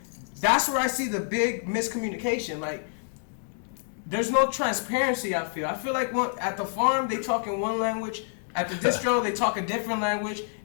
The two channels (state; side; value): silent; right; digital silence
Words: That's where I see the big miscommunication. Like, there's no transparency, I feel. I feel like at the farm, they talk in one language. At the distro, they talk a different language.